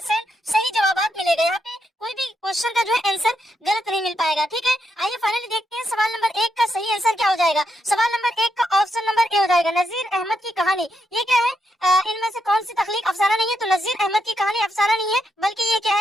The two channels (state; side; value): normal; both; correlation 0.81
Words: सही जवाब मिलेगा। यहाँ पे कोई भी क्वेश्चन का जो है आंसर गलत नहीं मिल पाएगा। ठीक है, आइए फाइनली देखते हैं सवाल नंबर 1 का सही आंसर क्या हो जाएगा। सवाल नंबर 1 का ऑप्शन नंबर ए हो जाएगा, नजीर अहमद की कहानी। ये क्या है, इनमें से कौन सी तख्लीक अफसाना नहीं है? तो नजीर अहमद की कहानी अफसाना नहीं है, बल्कि ये क्या